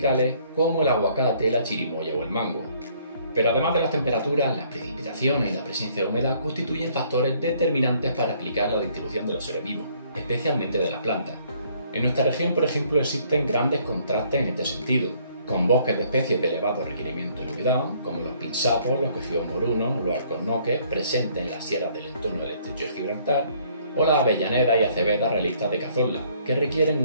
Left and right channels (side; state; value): both; inverted; correlation -0.63